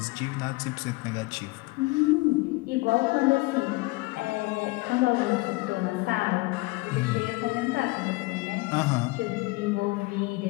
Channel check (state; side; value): quieter; right; 23.8 dB